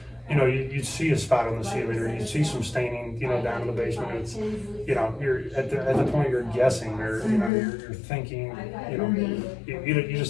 You know, you'd see a spot on the ceiling, or you'd see some staining, you know, down in the basement. It's, you know, you're at the point you're guessing, or you know, you're thinking, you know, you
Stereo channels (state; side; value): drops out; right; at 7.5 s